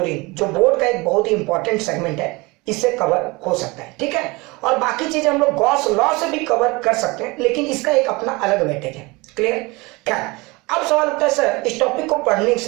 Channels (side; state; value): left; quieter; 24.6 dB